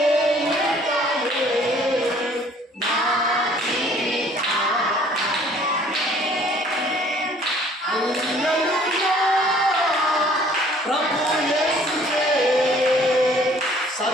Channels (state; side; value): normal; both; correlation 0.56